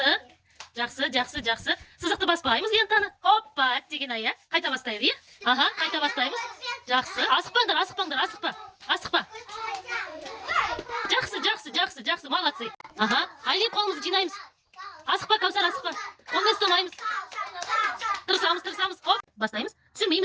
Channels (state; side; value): identical; both; correlation 1.00